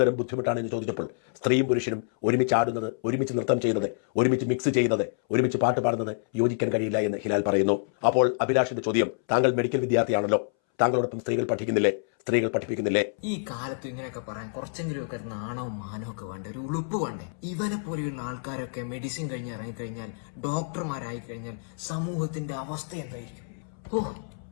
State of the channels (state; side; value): silent; right; 60 dB below the other